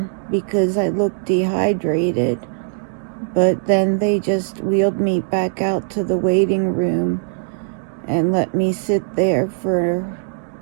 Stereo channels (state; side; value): silent; left; digital silence